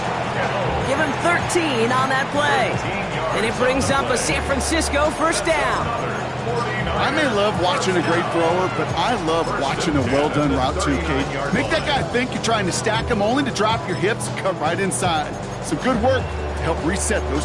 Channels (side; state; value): both; identical; correlation 1.00